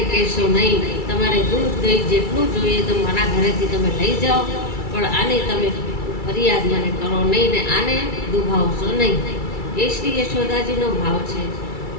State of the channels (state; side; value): late; right; 2.3 ms